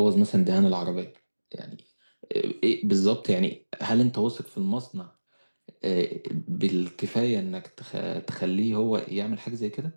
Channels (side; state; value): both; inverted; correlation -1.00